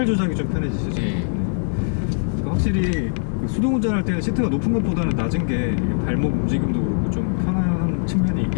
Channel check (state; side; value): silent; right; 64 dB below the other